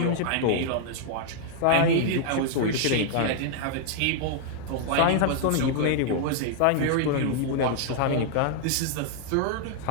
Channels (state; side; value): different; both; correlation 0.00